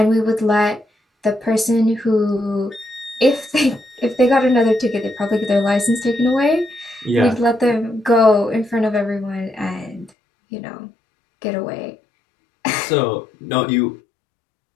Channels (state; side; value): drops out; right; at 10.1 s